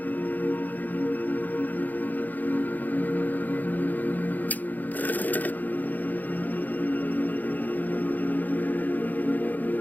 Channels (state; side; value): late; right; 0.083 ms